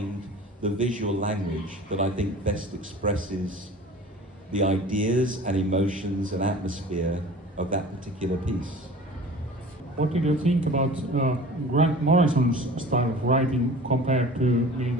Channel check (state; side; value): normal; both; correlation 0.41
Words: the visual language that I think best expresses the ideas and emotions and atmosphere of that particular piece. What did you think about Grant Morrison's style of writing compared to Neil